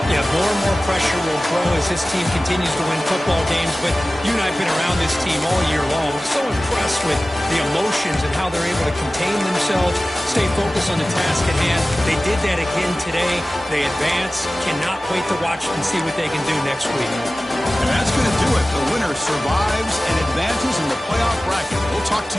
Yeah, more and more pressure will grow as this team continues to win football games, but you and I have been around this team all year long. So impressed with the emotions and how they're able to contain themselves, stay focused on the task at hand. They did that again today. They advance. Cannot wait to watch and see what they can do next week. And that's going to do it. The winner survives and advances in the playoff bracket. We'll talk to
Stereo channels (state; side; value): normal; both; correlation 0.97